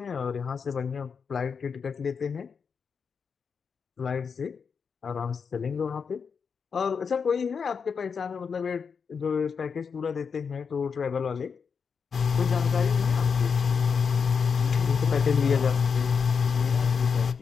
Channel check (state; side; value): quieter; right; 6.0 dB